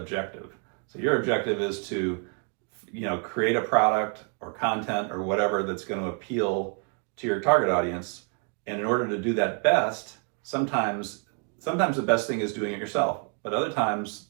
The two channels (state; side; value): quieter; left; 36.9 dB